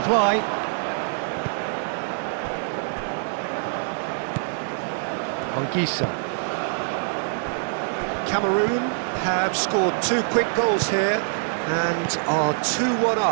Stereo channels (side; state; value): left; silent; 62 dB below the other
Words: Anguissa. Cameroon have scored 2 quick goals here and are 2-1